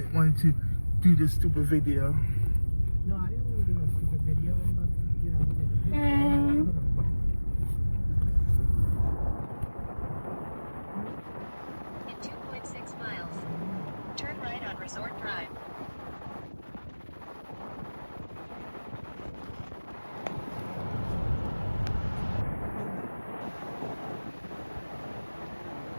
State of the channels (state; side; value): inverted; both; correlation -1.00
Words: to do this stupid video. No, I didn't want to do no stupid video. I'm about to get out and take a picture. In 2.6 miles, turn right on Resort Drive.